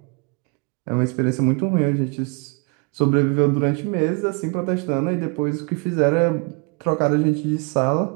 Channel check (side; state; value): left; quieter; 33.5 dB